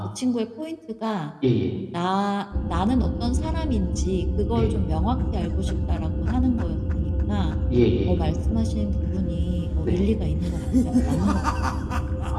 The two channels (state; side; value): identical; both; correlation 1.00